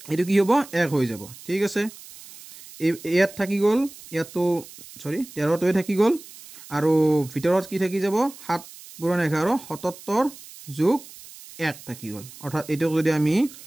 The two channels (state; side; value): noise; right; hiss, 18 dB below the sound